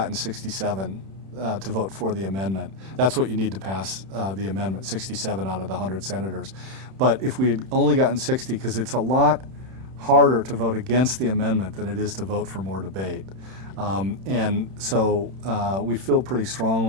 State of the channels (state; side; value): late; left; 31 ms